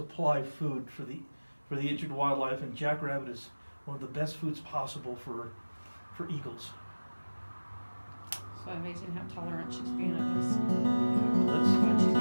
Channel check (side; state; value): both; inverted; correlation -1.00